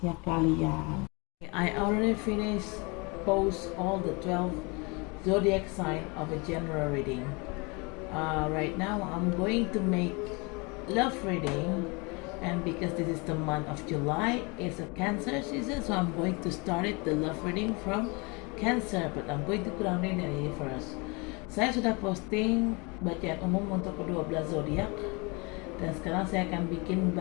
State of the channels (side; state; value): right; quieter; 29.1 dB